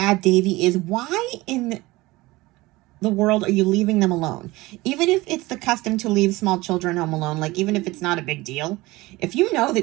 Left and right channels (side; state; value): left; quieter; 20.4 dB